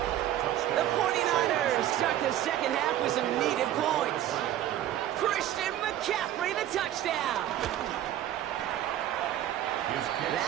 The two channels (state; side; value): quieter; left; 12.3 dB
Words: The 49ers start the second half with some needed points. Christian McCaffrey, the touchdown.